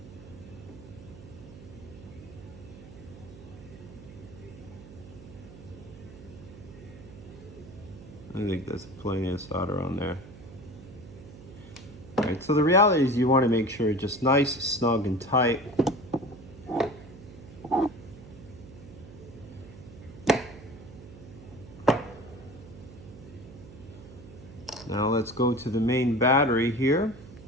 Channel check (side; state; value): right; noise; hum, 17 dB below the sound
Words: I think there's plenty of solder on there. All right, so the reality is you want to make sure it's just nice, snug, and tight. Now let's go to the main battery here.